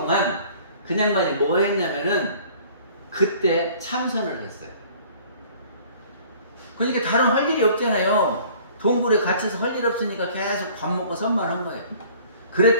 그 양반이 뭐 했냐면은 그때 참선을 했어요. 그러니까 다른 할 일이 없잖아요. 동굴에 갇혀서 할 일 없으니까 계속 밥 먹고 선만 한 거예요.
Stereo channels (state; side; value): inverted; both; correlation -0.51